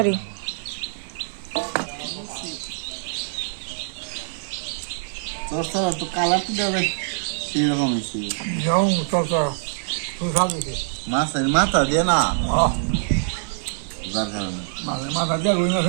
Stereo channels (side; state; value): left; silent; digital silence